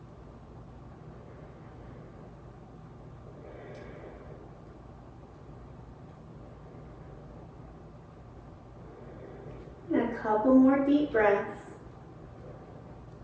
And a couple more deep breaths.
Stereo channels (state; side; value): identical; both; correlation 1.00